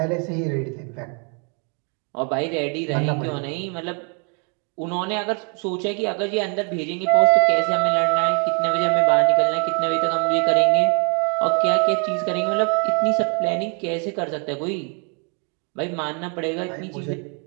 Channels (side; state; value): left; quieter; 37.2 dB